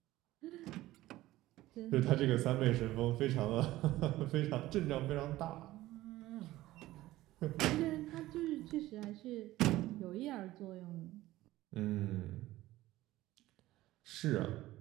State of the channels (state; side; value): quieter; left; 16.5 dB